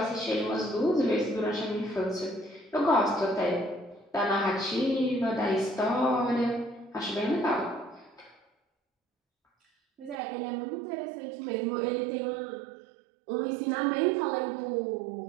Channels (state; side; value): drops out; left; at 10.2 s